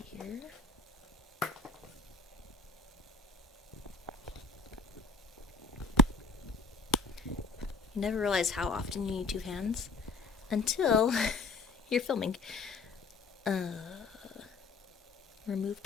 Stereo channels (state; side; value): quieter; right; 3.8 dB